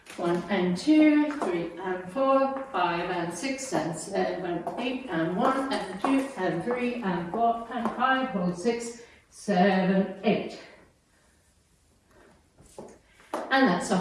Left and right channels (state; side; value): identical; both; correlation 1.00